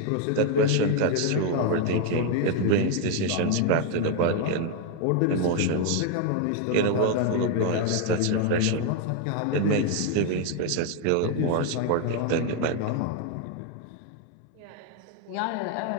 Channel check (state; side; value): different; both; correlation 0.01